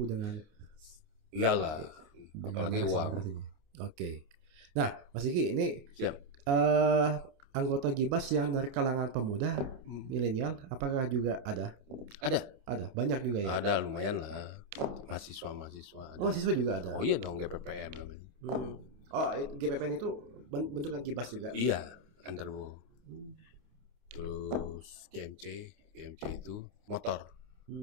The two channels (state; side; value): late; left; 28 ms